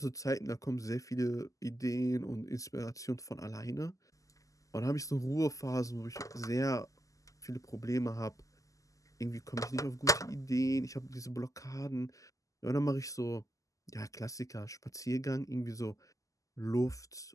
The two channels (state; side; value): late; right; 0.16 ms